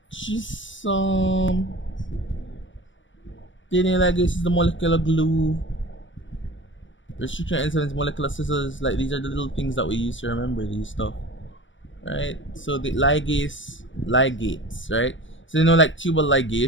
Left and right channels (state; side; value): late; right; 0.56 ms